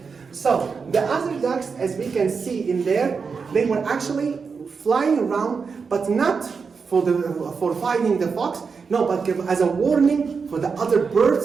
So the other ducks, as we can see in there, they were actually flying around, but not for fighting the fox. No, but as a warning for the other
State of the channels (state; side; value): quieter; left; 5.4 dB